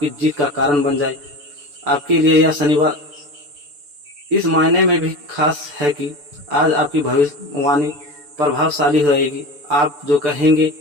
जीत का कारण बन जाए। आपके लिए यह शनिवार इस मायने में भी खास है कि आज आपकी भविष्यवाणी प्रभावशाली रहेगी। आप जो कहेंगे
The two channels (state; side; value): late; left; 6.9 ms